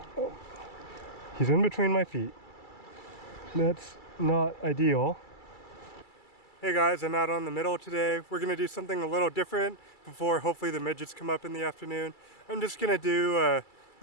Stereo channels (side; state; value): right; late; 2.3 ms